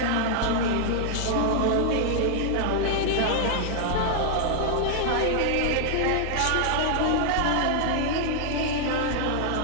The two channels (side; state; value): both; different; correlation 0.00